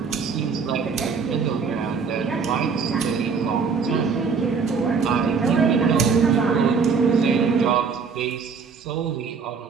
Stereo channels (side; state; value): left; quieter; 5.5 dB